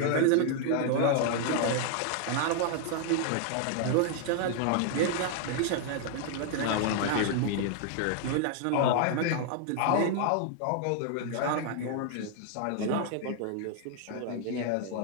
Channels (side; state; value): both; different; correlation 0.00